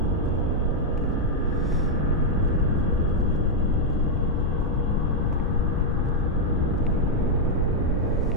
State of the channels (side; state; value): both; normal; correlation -0.03